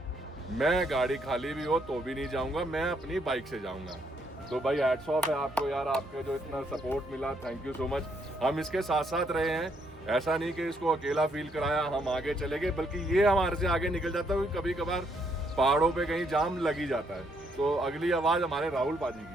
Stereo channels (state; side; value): normal; both; correlation 0.73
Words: मैं गाड़ी खाली भी हो तो भी नहीं जाऊँगा, मैं अपनी बाइक से जाऊँगा। तो भाई हैट्स ऑफ है आपको यार, आपका जो इतना सपोर्ट मिला, थैंक यू सो मच। हम इसके साथ साथ रहे हैं, ऐसा नहीं कि इसको अकेला फील कराया हम आगे चले गए, बल्कि ये हमारे से आगे निकल जाता है। कभी कभार पहाड़ों पे कहीं जाम लग ही जाता है। तो अगली आवाज़ हमारे राहुल पाजी